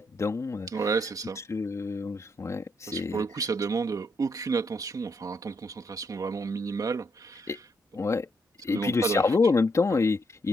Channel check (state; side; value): normal; both; correlation 0.76